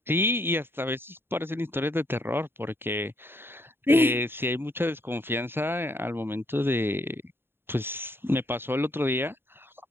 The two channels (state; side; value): late; left; 0.11 ms